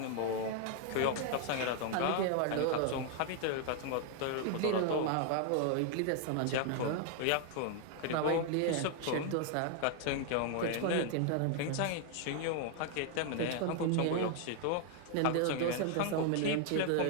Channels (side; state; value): both; different; correlation 0.00